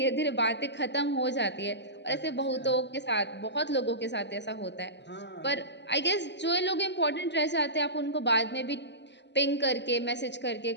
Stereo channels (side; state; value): right; late; 0.51 ms